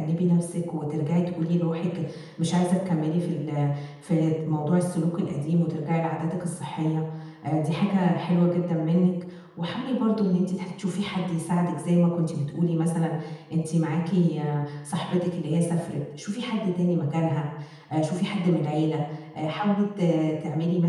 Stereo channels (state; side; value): identical; both; correlation 1.00